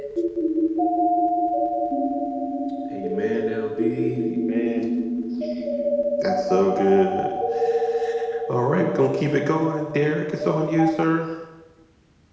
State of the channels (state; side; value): identical; both; correlation 1.00